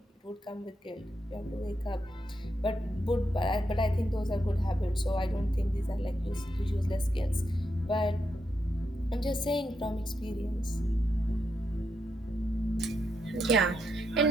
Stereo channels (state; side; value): normal; both; correlation 0.83